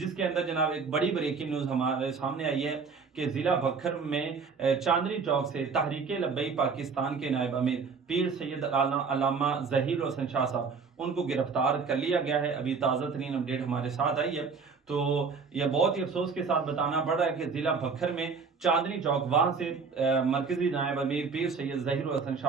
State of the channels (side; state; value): left; quieter; 5.1 dB